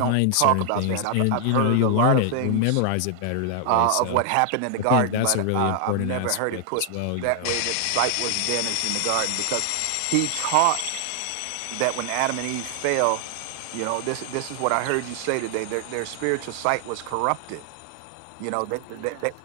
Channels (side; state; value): both; different; correlation 0.00